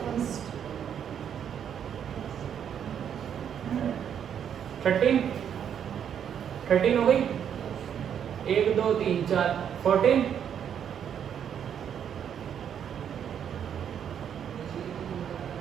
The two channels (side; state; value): left; quieter; 8.6 dB